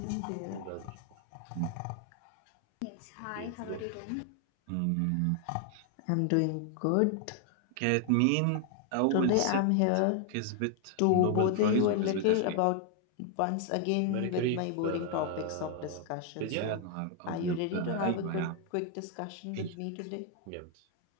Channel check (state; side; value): different; both; correlation 0.00